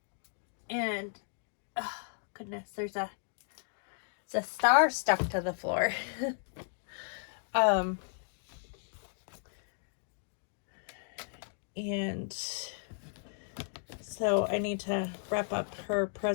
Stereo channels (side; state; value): right; silent; digital silence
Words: And, oh goodness, there's a star stuck to the floor. And so I need to wrap up her